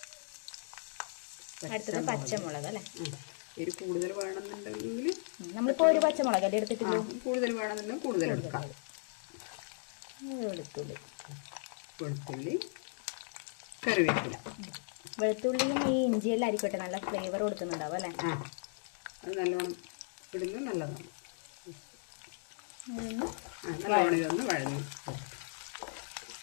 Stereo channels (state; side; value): silent; right; digital silence